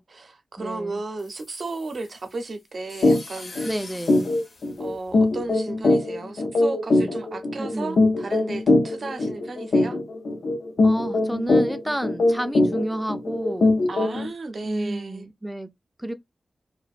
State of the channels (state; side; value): normal; both; correlation 0.92